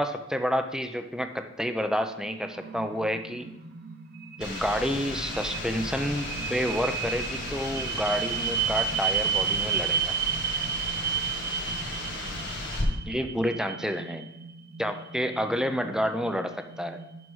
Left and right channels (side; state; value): both; normal; correlation 0.48